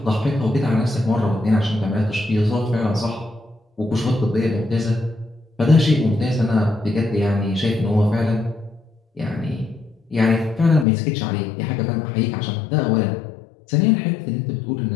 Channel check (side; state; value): right; drops out; at 10.9 s